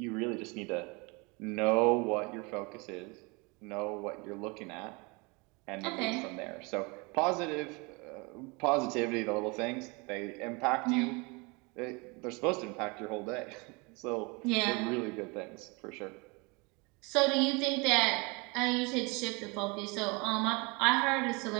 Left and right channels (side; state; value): left; quieter; 28.3 dB